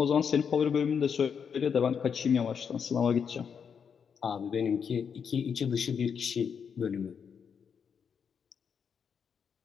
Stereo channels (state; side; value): quieter; right; 6.9 dB